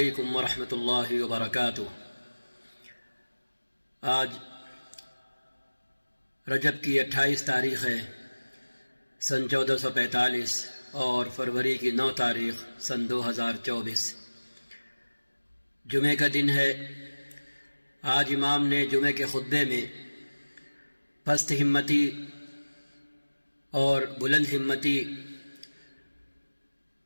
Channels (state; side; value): inverted; both; correlation -1.00